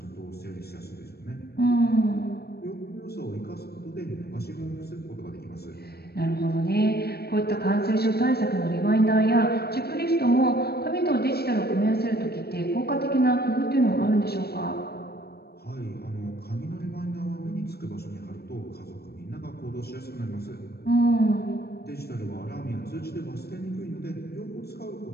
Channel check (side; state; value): right; late; 0.46 ms